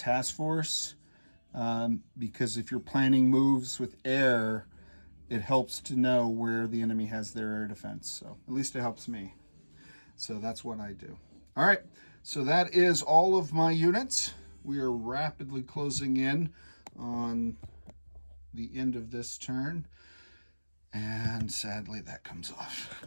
force. Because if you're planning moves with air, it helps to know where the enemy has their air defense. So at least it helps me. So that's what I do. All right. So that is all of my units. We are rapidly closing in on the end of this turn. And sadly, that comes off.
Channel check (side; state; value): both; inverted; correlation -1.00